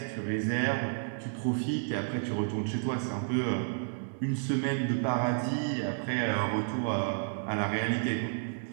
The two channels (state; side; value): silent; left; digital silence